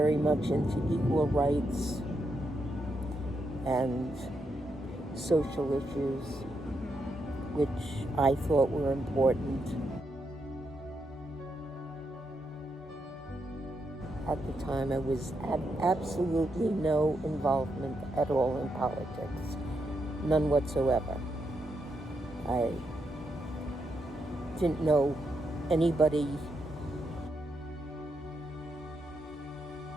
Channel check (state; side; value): normal; both; correlation 0.82